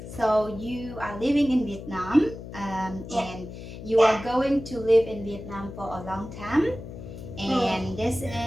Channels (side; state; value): left; noise; hum, 12 dB below the sound